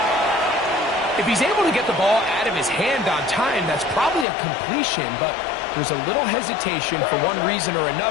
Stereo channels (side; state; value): right; drops out; at 4.2 s